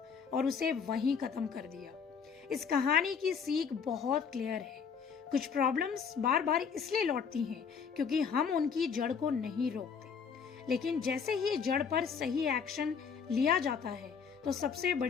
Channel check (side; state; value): right; quieter; 6.4 dB